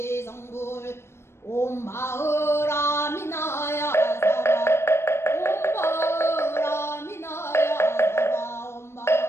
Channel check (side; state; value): right; late; 0.12 ms